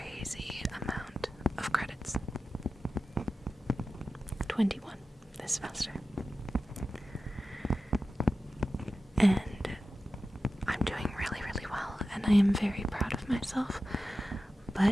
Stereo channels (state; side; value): normal; both; correlation 0.93